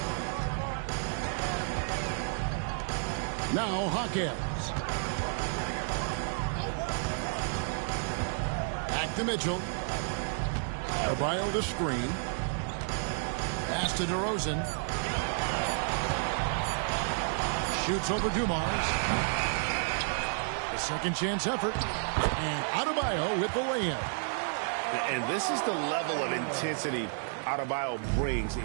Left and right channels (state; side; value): silent; left; 57 dB below the other